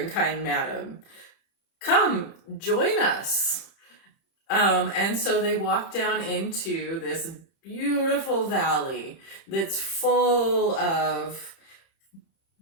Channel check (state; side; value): late; right; 30 ms